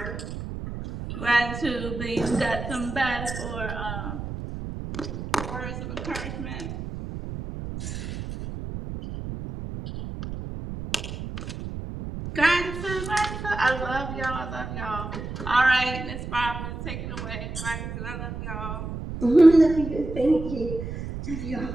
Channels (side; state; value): right; noise; rumble, 7 dB below the sound